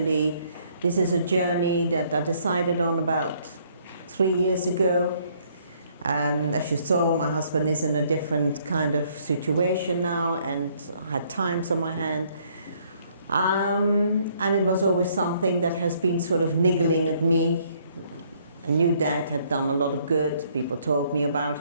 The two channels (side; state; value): both; inverted; correlation -0.66